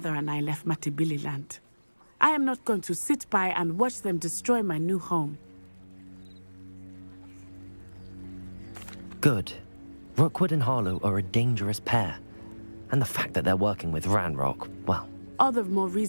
and I left Matibili land. I am not going to sit by and watch them destroy my new home. Good. Rookwood and Harlow are a dangerous pair. And the fact that they're working with Ranrock, well... All the more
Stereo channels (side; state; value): both; inverted; correlation -1.00